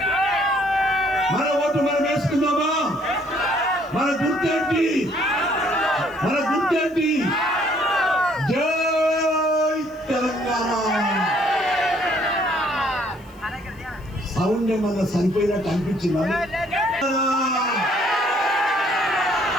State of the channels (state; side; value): noise; left; hiss, 30 dB below the sound